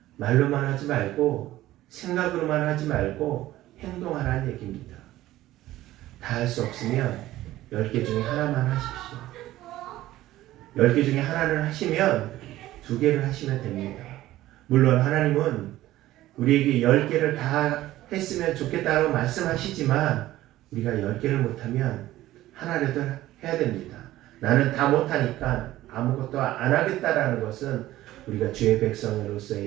말로만 하지 말고 생각으로만 하지 말고 행동하라는 얘기입니다. 다 할 수 없으면 10개 중에 하나만 하십시오. 10개 중에 하나를 하시면 2개를 하시면 됩니다. 물론 하나님은 우리에게 10개를 다 했으면 좋겠다고 말씀하시지만 우리가 10개를 못하면 하나라도 해야 됩니다. 나는 다 못하니까 아무것도 안 하겠다라는 것은 우리가 주의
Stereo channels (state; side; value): quieter; left; 15.3 dB